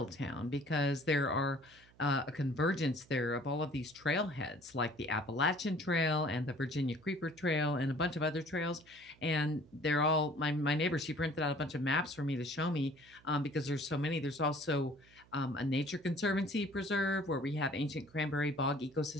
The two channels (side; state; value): right; noise; hum, 27 dB below the sound